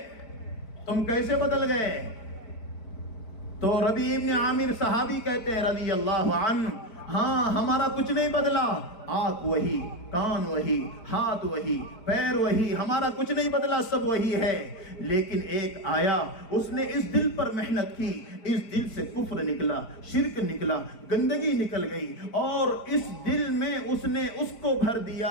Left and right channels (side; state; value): right; late; 4.5 ms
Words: تم کیسے بدل گئے؟ تو ربیع ابن عامر صحابی کہتے ہیں رضی اللہ عنہ، ہاں ہمارا کچھ نہیں بدلا، آنکھ وہی، کان وہی، ہاتھ وہی، پیر وہی، ہمارا کچھ نہیں بدلا، سب وہی ہے۔ لیکن ایک آیا، اس نے اس دل پر محنت کی، اس دل سے کفر نکلا، شرک نکلا، گندگی نکل گئی، اور اس دل میں اس نے اس کو بھر